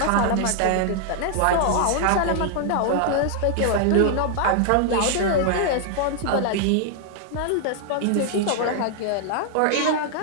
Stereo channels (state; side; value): different; both; correlation 0.00